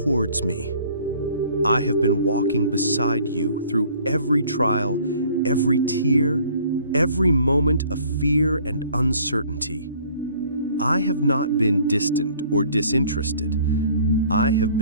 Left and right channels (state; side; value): inverted; both; correlation -0.55